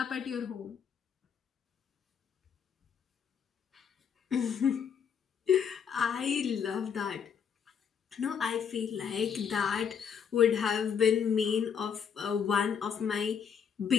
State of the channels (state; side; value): quieter; right; 7.3 dB